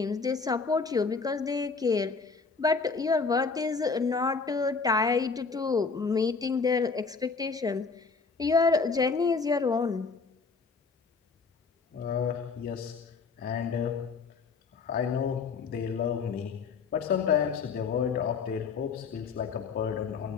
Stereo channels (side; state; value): right; quieter; 4.9 dB